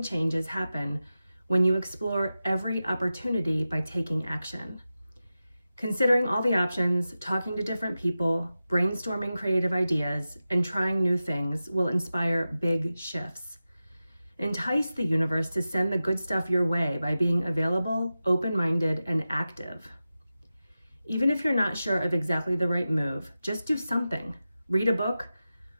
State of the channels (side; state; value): both; inverted; correlation -0.93